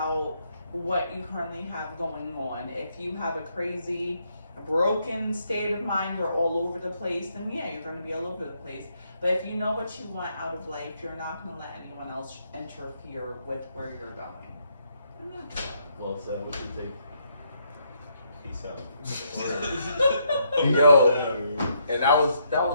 what you currently have going on. If you have a crazy, broken state of mind, you're all over the place, then yeah, you're going to be all over the place. But if you know what you want out of life, you're not going to let anyone else interfere with where you're going. Well said. What you think? Peace out. Yo, and that was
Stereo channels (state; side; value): inverted; both; correlation -0.74